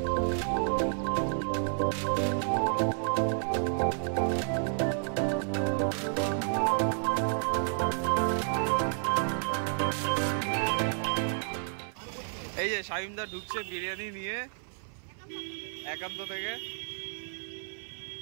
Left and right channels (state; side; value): silent; left; 57 dB below the other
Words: এই যে শামিমদা ঢুকছে বিরিয়ানি নিয়ে একান্ত থেকে।